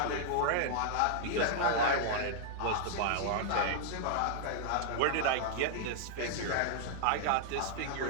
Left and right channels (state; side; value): different; both; correlation -0.01